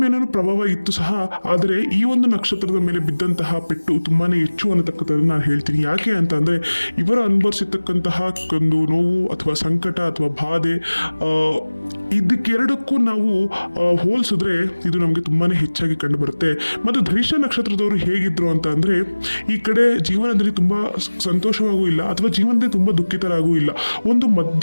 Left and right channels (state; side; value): inverted; both; correlation -1.00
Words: ಮೇಲೂ ಪ್ರಭಾವ ಇತ್ತು ಸಹ. ಆದರೆ ಈ ಒಂದು ನಕ್ಷತ್ರದ ಮೇಲೆ ಬಿದ್ದಂತಹ ಪೆಟ್ಟು ತುಂಬಾ ಹೆಚ್ಚು ಅನ್ನತಕ್ಕಂಥದ್ದು ನಾನು ಹೇಳ್ತೀನಿ. ಯಾಕೆ ಅಂತ ಅಂದರೆ, ಇವರು ಅನುಭವಿಸಿರ್ತಕ್ಕಂತಹ ಒಂದು ನೋವು ಅಥವಾ ಸಂಕಟ ಅಥವಾ ಬಾಧೆ, ಇದಕ್ಕೆರಡಕ್ಕೂ ನಾವು ಹೋಲಿಸಿದ್ರೆ ಇದು ನಮಗೆ ತುಂಬಾ ಹೆಚ್ಚಾಗಿ ಕಂಡುಬರುತ್ತೆ. ಮತ್ತು ಧನಿಷ್ಠ ನಕ್ಷತ್ರದವರು ಹೇಗಿದ್ರು ಅಂತ ಅಂದರೆ, ಈ ಕಡೆ ಜೀವನದಲ್ಲಿ ತುಂಬ ಸಂತೋಷವಾಗೂ ಇಲ್ಲ ಅಥವಾ ಜೀವನದಲ್ಲಿ ತುಂಬ ದುಃಖಿತರಾಗೂ ಇಲ್ಲ.